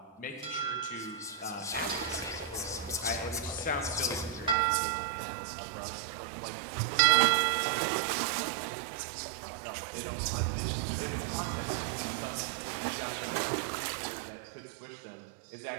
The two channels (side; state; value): left; drops out; at 4.5 s